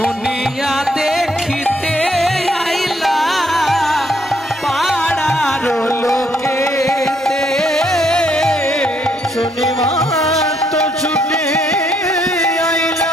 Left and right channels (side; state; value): both; normal; correlation 0.71